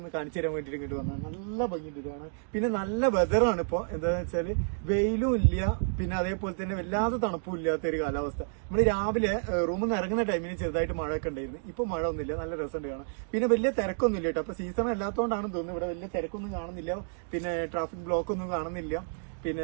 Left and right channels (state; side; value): silent; left; digital silence